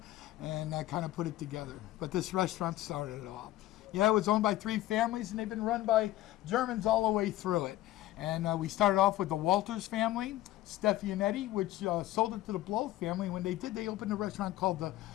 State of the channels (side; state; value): right; quieter; 15.3 dB